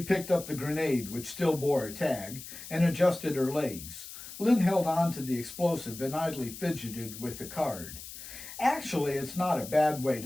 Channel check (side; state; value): left; noise; hiss, 13 dB below the sound